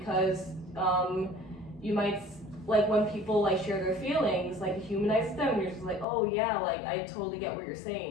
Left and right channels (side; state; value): right; drops out; at 6.1 s